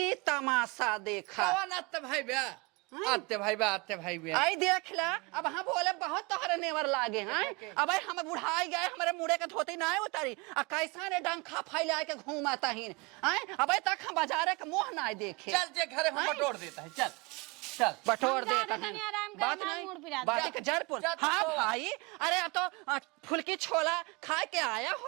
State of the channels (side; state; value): left; quieter; 27.1 dB